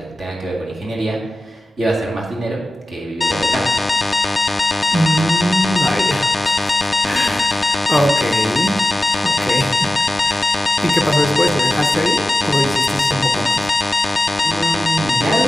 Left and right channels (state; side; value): normal; both; correlation 0.95